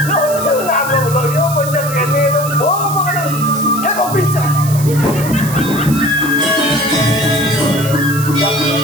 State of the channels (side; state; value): right; noise; hiss, 11 dB below the sound